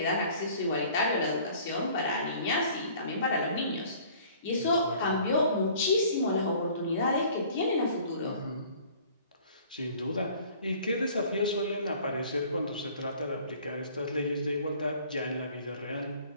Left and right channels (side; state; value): both; inverted; correlation -0.52